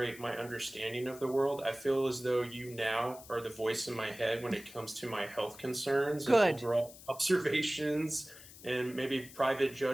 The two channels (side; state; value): left; noise; hiss, 18 dB below the sound